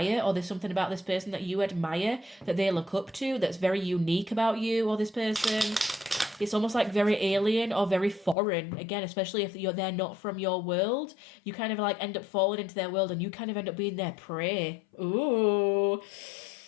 or there's something about this person that you admire, that they look up to, that's very unique about you or this person. It's almost like very alien or very foreign. Again, especially if they're not from your world, you kind of like end up falling into their world and you kind of end up being their prey. Ooh.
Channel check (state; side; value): drops out; right; at 8.3 s